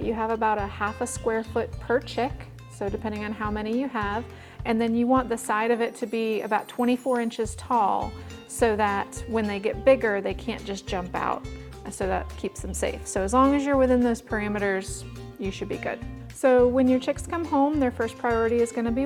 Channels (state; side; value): identical; both; correlation 1.00